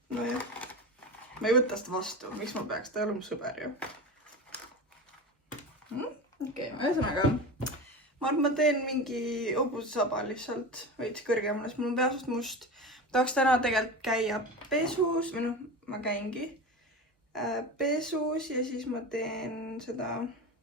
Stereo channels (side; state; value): both; normal; correlation 0.27